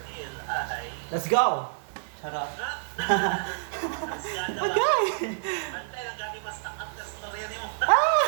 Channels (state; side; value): silent; left; digital silence